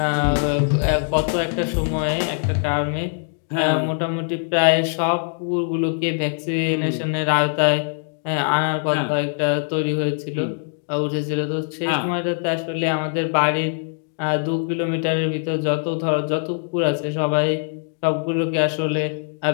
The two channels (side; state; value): right; silent; 64 dB below the other